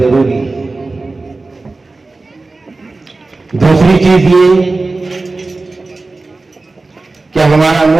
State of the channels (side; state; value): left; quieter; 3.5 dB